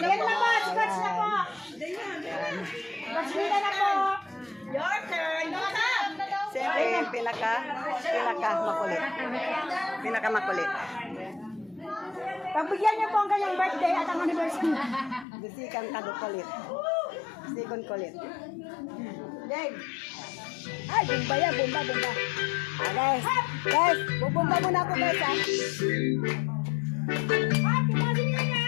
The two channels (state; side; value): drops out; right; at 15.2 s